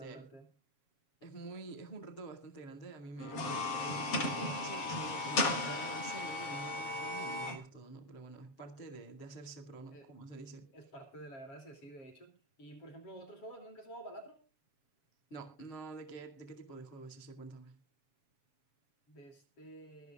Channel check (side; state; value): right; late; 7.2 ms